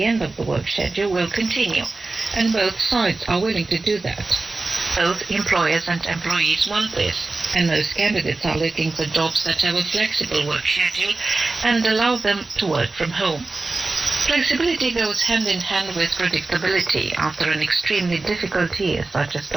end of the work schedule will continue, and both sides are willing to do that. Both employers and employees want this, and most candidates are looking for jobs that have a flexible work schedule and allow them to work from home. Flexibility goes hand in hand with predictability after an extremely difficult year such as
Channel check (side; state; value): left; quieter; 3.4 dB